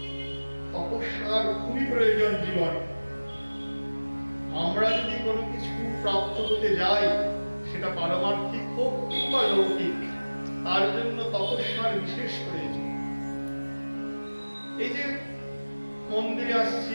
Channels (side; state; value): both; inverted; correlation -1.00